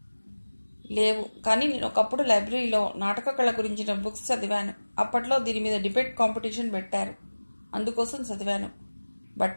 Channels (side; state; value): both; inverted; correlation -1.00